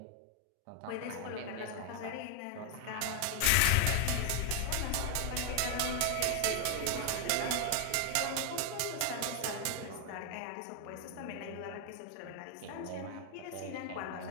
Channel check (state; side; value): different; both; correlation 0.00